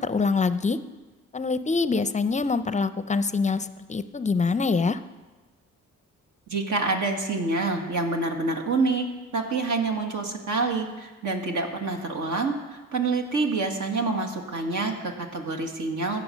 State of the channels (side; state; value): both; normal; correlation 0.40